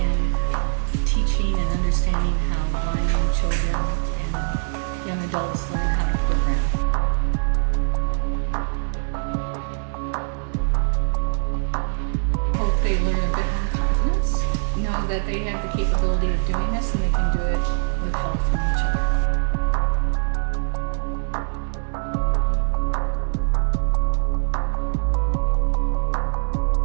teaching and understanding how blind children and young adults learn how to program. I hope they learn a bit more confidence, know that they have the capability of doing this and they can do it with help from each other.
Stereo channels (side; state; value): left; silent; digital silence